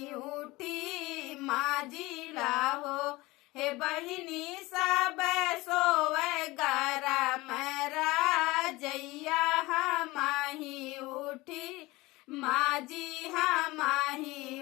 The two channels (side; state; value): right; quieter; 21.1 dB